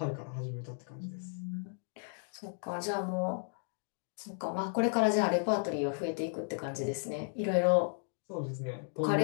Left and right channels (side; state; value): right; silent; 55 dB below the other